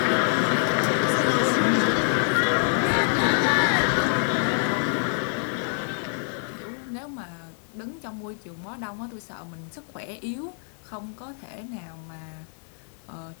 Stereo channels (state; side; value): silent; right; 61 dB below the other